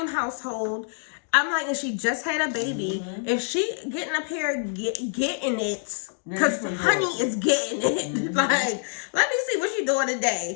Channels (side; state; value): right; silent; digital silence